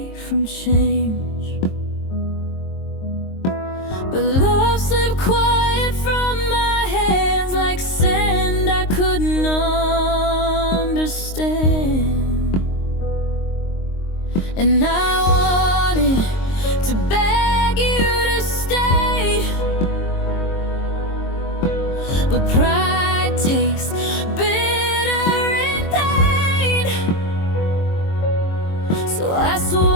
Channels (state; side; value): late; right; 22 ms